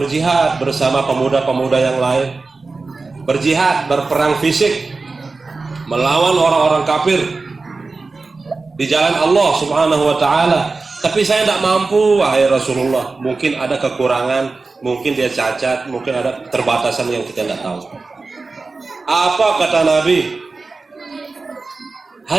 bersama pemuda-pemuda yang lain, berjihad, berperang fisik melawan orang-orang kafir di jalan Allah Subhanahu wa taala, tapi saya tidak mampu wahai Rasulullah. Mungkin ada kekurangan, mungkin dia cacat, mungkin ada keterbatasan yang kita tidak tahu. Apa kata Nabi?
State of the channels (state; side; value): quieter; left; 3.9 dB